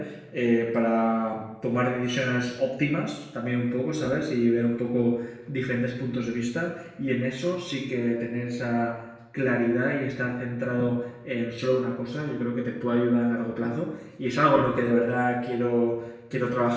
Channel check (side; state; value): both; identical; correlation 1.00